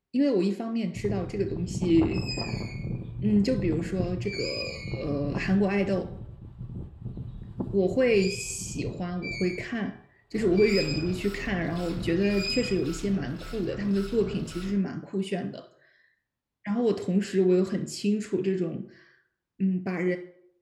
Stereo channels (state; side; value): identical; both; correlation 1.00